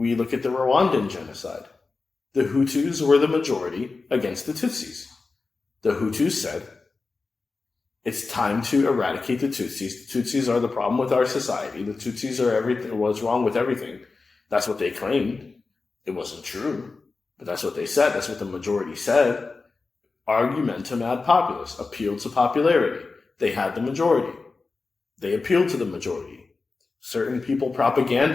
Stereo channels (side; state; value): right; quieter; 4.0 dB